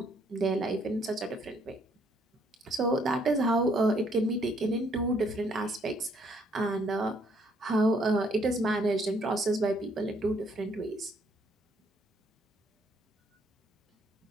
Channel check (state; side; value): normal; both; correlation 0.67